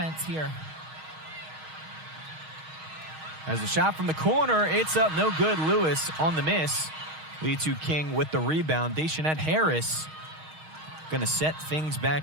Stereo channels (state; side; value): late; left; 6.4 ms